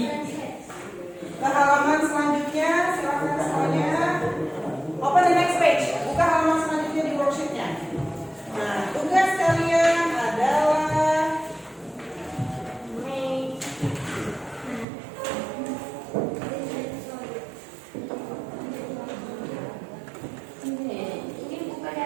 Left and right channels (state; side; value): drops out; left; at 14.9 s